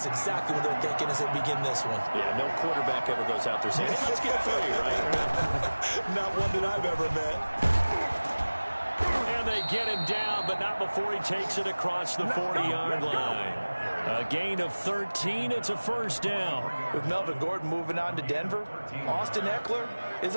exactly what they're thinking as they begin this one. Yeah, no quarterback ever goes out there saying, hey, let's get 3, right? Not one that I've ever met. And they get him down, but not before he takes it across the 40-yard line. A gain of 13. It's a first down. With Melvin Gordon moving on to Denver, Austin Eckler is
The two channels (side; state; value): both; inverted; correlation -1.00